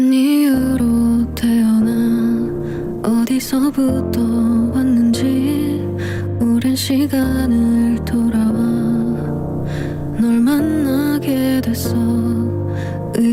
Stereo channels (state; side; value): identical; both; correlation 1.00